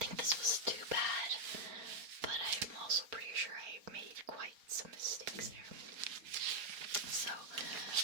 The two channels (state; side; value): late; left; 4.4 ms